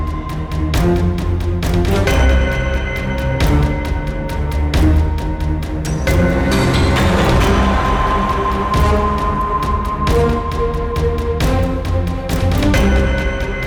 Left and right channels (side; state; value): both; identical; correlation 1.00